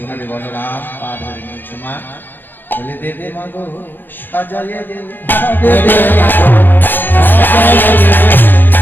বলরাম পা ধরে নিয়েছে মা বলে দেবে মা গো সাজাইয়ে দে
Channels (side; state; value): right; late; 0.092 ms